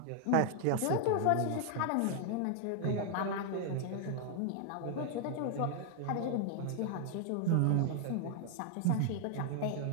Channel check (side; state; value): both; different; correlation 0.00